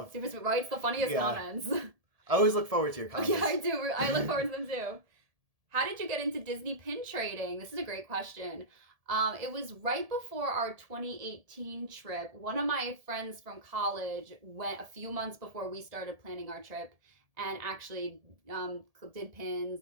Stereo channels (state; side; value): late; left; 1.7 ms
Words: Super sweet, right? It's the funniest comments. I always look forward to your comments. Yeah, I do. I look forward to them too. How did you get into Disney pin trading? This is a great question. It was right before our 2018 trip. One of my friends from college went a few months before we started planning our trip and actually did pins,